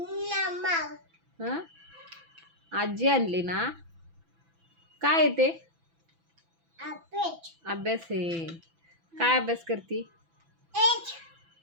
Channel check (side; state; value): left; late; 6.0 ms